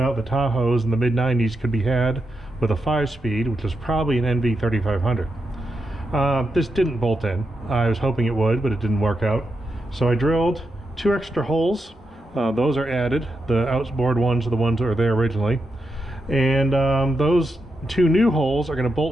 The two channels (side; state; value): both; normal; correlation 0.86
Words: the Tahoes in the mid-90s could be had with a 5-speed, which is probably an NV3500. This didn't bolt in. I was hoping it would, but it didn't work out. So I drilled 2 extra holes. Those are added. The outboard ones are the ones that were there originally. And those 2 new holes are going to